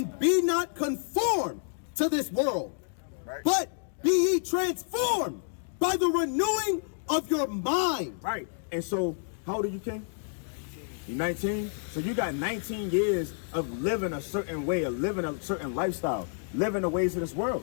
be not conformed to this world, but be ye transformed by the renewing of your mind. Right. And so, how old are you, King? You're 19? So you got 19 years of living a certain way, of living a certain lifestyle, living the ways of this world.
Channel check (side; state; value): right; silent; digital silence